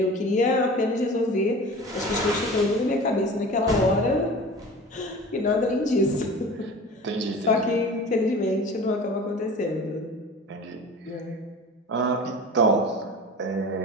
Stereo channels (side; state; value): both; normal; correlation 0.38